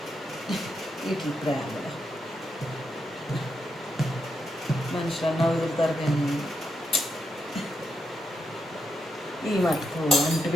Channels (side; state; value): both; normal; correlation 0.83